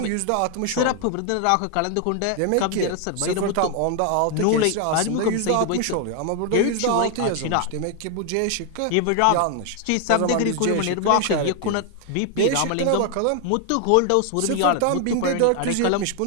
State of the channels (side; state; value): both; different; correlation 0.01